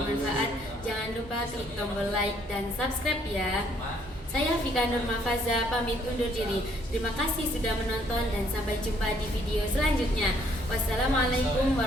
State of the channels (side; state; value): both; normal; correlation 0.66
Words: jangan lupa klik tombol like dan subscribe ya. Saya Vika Nurmafaza pamit undur diri. Terima kasih sudah menonton dan sampai jumpa di video selanjutnya. Wassalamualaikum